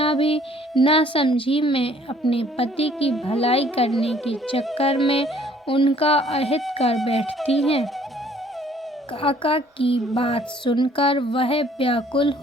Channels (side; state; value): both; normal; correlation 0.59